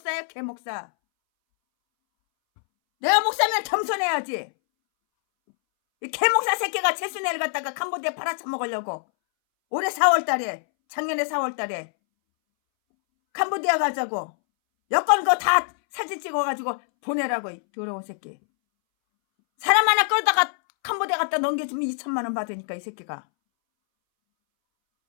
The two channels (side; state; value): right; silent; 62 dB below the other